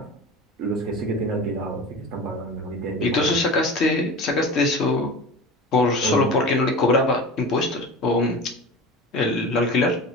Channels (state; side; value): normal; both; correlation 0.33